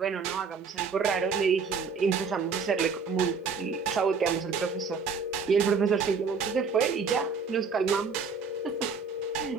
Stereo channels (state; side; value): quieter; left; 5.2 dB